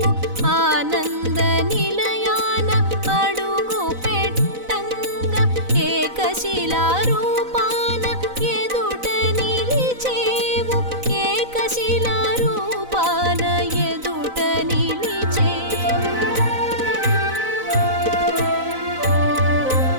ఆనంద నిలయాన అడుగు పెట్టంగా ఏకశిలా రూపాన ఎదుట నిలిచేవు ఏకశిలా రూపాన ఎదుట నిలిచేవు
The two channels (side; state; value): left; late; 4.0 ms